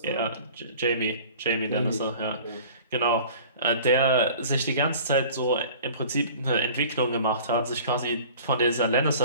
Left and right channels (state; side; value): inverted; both; correlation -0.44